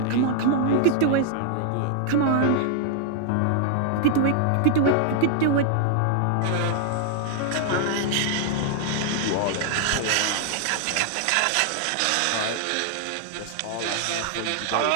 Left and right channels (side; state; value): both; different; correlation 0.00